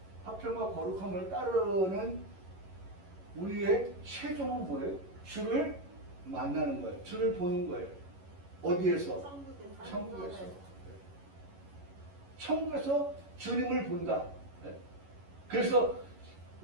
화평과 거룩함을 따르는 우리의 최종은 뭐예요? 주를 만나는 거예요. 주를 보는 거예요. 어디에서? 천국에서. 천국에서 주님을 본다. 그래서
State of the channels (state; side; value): late; left; 11 ms